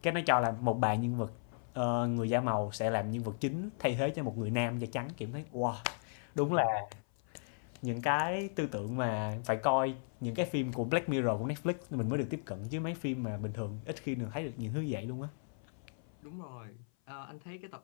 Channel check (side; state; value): right; silent; 54 dB below the other